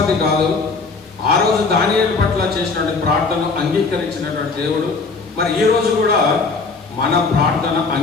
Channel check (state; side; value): quieter; right; 4.2 dB